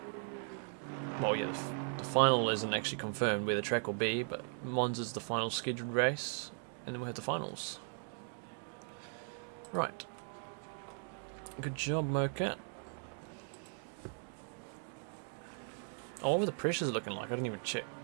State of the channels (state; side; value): silent; left; 52 dB below the other